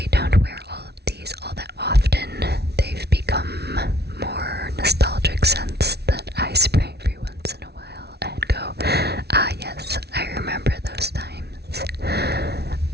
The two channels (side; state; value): left; late; 0.48 ms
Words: don't wear all of these all that often. They've become more nostalgic scents that I spray every once in a while and go, ah yes, I remember those times.